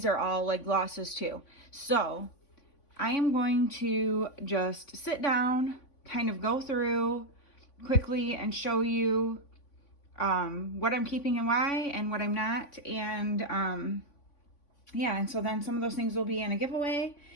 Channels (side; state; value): right; late; 3.5 ms